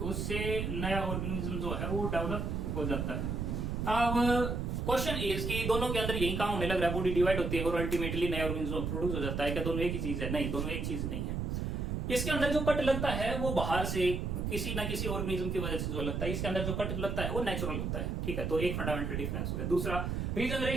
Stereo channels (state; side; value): noise; right; rumble, 1 dB below the sound